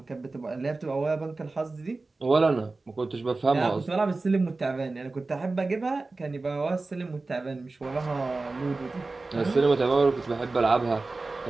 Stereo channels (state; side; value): quieter; left; 3.5 dB